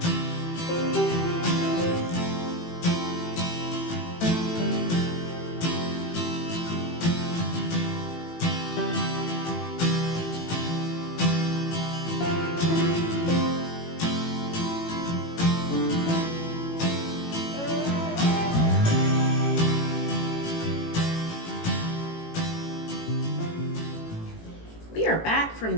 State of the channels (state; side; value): late; right; 18 ms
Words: We are back from